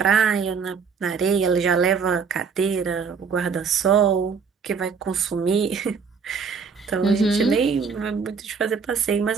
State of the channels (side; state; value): left; quieter; 5.8 dB